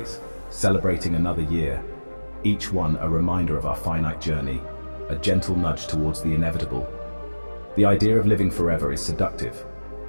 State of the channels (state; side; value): inverted; both; correlation -1.00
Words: celebrating another year, each one a reminder of our finite journey, a gentle nudge towards the inevitable. The idea of living forever is seductive,